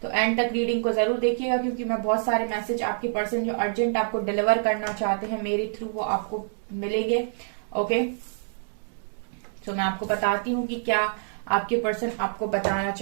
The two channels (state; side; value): silent; left; digital silence